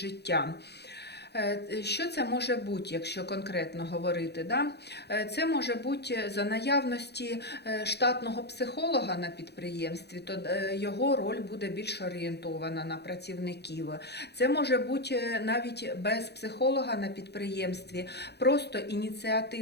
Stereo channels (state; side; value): late; right; 0.48 ms